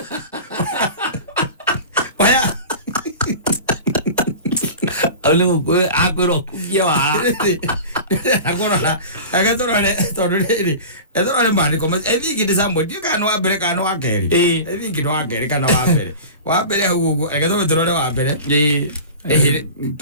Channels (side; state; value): both; inverted; correlation -0.35